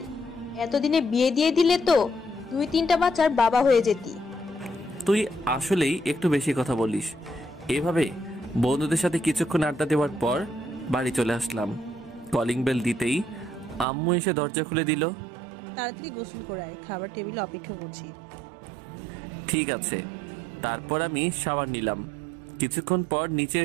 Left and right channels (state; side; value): drops out; left; at 13.9 s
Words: এতদিনে বিয়ে দিয়ে দিলে তো 2-3টা বাচ্চার বাবা হয়ে যেতি। তুই আসলেই একটু বেশি কথা বলিস। এভাবে বন্ধুদের সাথে কিছুক্ষণ আড্ডা দেওয়ার পর বাড়ি চলে আসলাম। কলিং বেল দিতেই আম্মু এসে দরজা খুলে দিল। তাড়াতাড়ি গোসল করে আয়, খাবার টেবিলে অপেক্ষা করছি। ঠিক আছে। তারপর আমি শাওয়ার নিলাম। কিছুক্ষণ পর নিচে